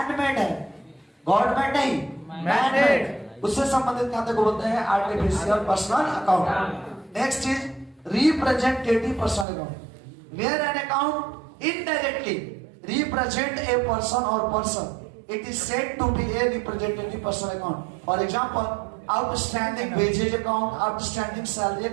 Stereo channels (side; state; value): left; drops out; at 9.5 s